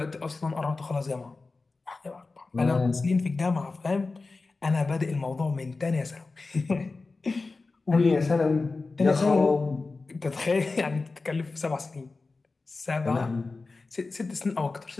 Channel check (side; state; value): right; quieter; 3.7 dB